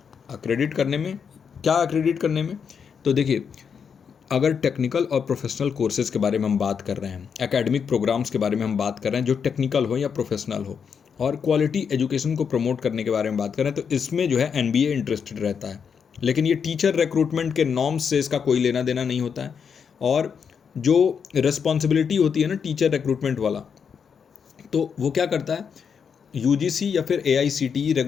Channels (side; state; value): right; quieter; 6.7 dB